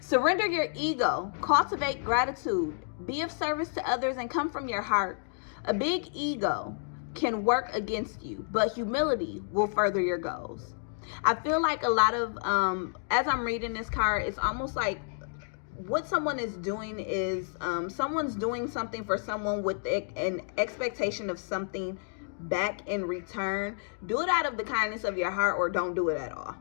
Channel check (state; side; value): silent; right; digital silence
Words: Surrender your ego. Cultivate gratitude. Be of service to others and come from your heart. A big ego can work against you, but humility will further your goals. I feel like a lot of, as I'm reading this card, it's almost like what someone is doing is someone's doing something for someone with an expectation of something back in return. Do it out of the kindness of your heart, or don't do it at all.